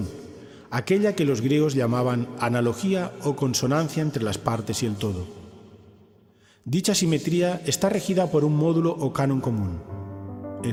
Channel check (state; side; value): identical; both; correlation 1.00